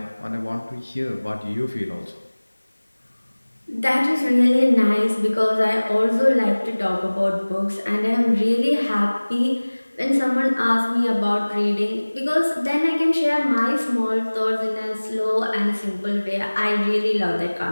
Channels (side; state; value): both; inverted; correlation -1.00